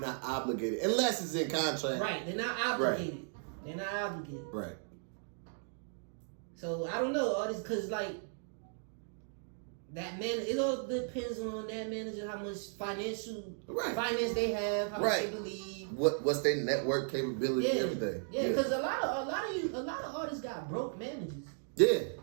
obligated unless it's in contract. Right, they're not obligated. Right. They're not obligated. Right. So I don't know artists, because like that man, it all depends on that manager how much finance they have, how much they believe. What's their network capability, everything. Yeah, because a lot of artists got broke managers. Yeah.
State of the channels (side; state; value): left; silent; digital silence